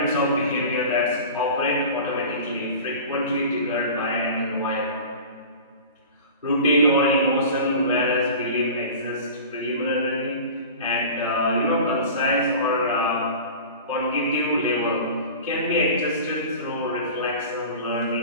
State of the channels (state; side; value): inverted; both; correlation -0.37